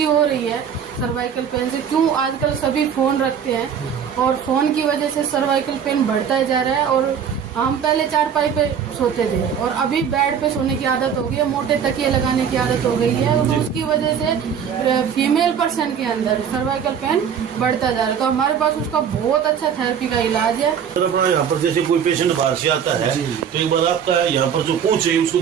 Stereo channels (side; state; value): left; quieter; 7.8 dB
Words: हो रही है सर्वाइकल पेन से। क्यों, आजकल सभी फोन रखते हैं और फोन की वजह से सर्वाइकल पेन बढ़ता जा रहा है। और हम पहले चारपाई पे सोते थे और अभी बेड पे सोने की आदत हो गई है, मोटे तकिए लगाने की आदत हो गई है, और उसकी वजह से फीमेल पर्सन के अंदर सर्वाइकल पेन बढ़ता जा रहा है। तो हमारे पास उसका बहुत अच्छा थेरेपी का इलाज है। सर अपना यहाँ पर जैसे कोई पेशेंट बाहर से आता है तो एक बार आपका यहाँ पर जो पहुंचे उसको